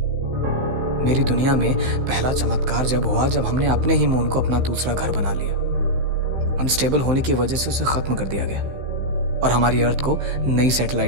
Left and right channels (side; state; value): left; late; 15 ms